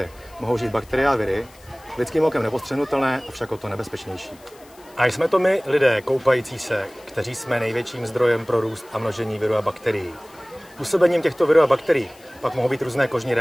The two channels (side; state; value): left; noise; hiss, 26 dB below the sound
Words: mohou žít bakterie a viry, lidským okem nepostřehnutelné, avšak o to nebezpečnější. A jsme to my, lidé koupající se, kteří jsme největším zdrojem pro růst a množení virů a bakterií. Působením těchto virů a bakterií pak mohou být různé kožní